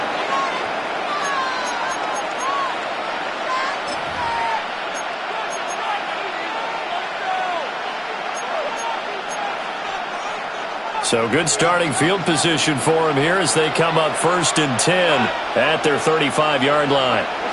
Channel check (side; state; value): both; identical; correlation 1.00